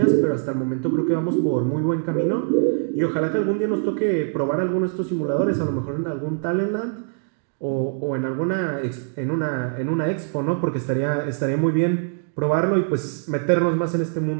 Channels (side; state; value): left; silent; 55 dB below the other